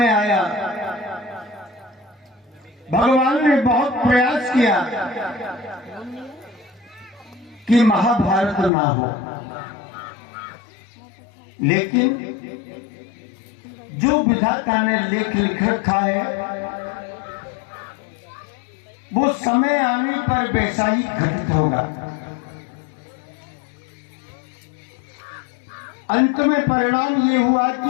आया, भगवान ने बहुत प्रयास किया कि महाभारत ना हो, लेकिन जो विधाता ने लेख लिख रखा है वो समय आने पर वैसा ही घटित होगा। अंत में परिणाम ये हुआ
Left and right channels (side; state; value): right; drops out; at 8.7 s